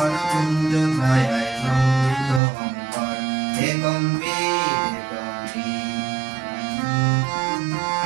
কুঞ্জ ছায় সমৃদ্ধ অন্তর হে গম্ভীর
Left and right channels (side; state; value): left; drops out; at 2.4 s